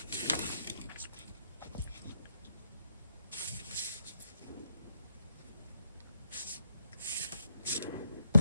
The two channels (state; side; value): inverted; both; correlation -0.78